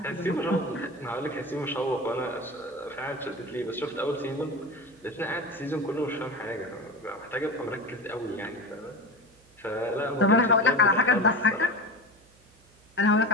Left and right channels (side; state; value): right; noise; hum, 29 dB below the sound